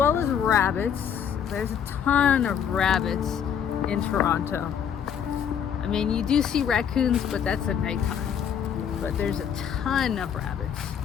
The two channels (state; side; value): quieter; right; 8.2 dB